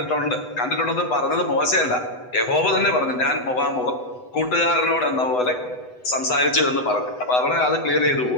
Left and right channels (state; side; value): late; right; 8.1 ms